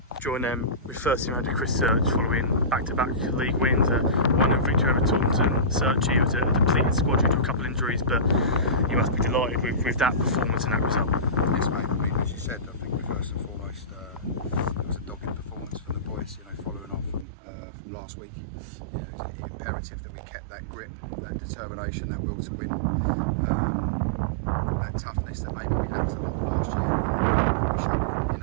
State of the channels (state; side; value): drops out; left; at 17.2 s